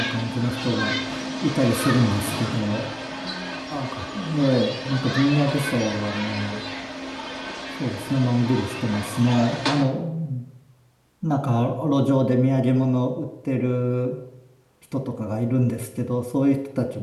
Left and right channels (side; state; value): both; identical; correlation 1.00